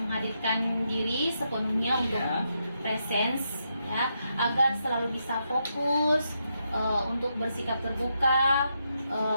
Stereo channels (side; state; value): both; inverted; correlation -0.82